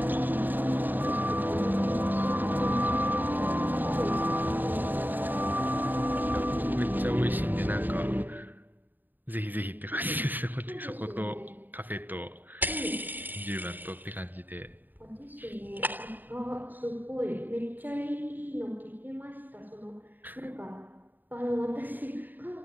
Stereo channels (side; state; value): left; late; 0.089 ms